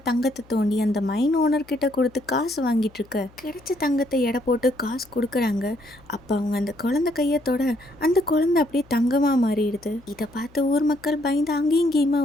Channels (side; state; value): left; noise; hum, 27 dB below the sound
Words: தங்கத்தை தோண்டி அந்த மைன் ஓனர் கிட்ட கொடுத்து காசு வாங்கிட்டு இருக்க கிடைச்ச தங்கத்தை எடை போட்டு காசு கொடுக்குறாங்க. அப்ப அவங்க அந்த குழந்தை கையை தொட அந்த குழந்தை அப்படியே தங்கமா மாறிடுது. இதை பார்த்து ஊர் மக்கள் பயந்து அங்கேயும் இங்கேயுமா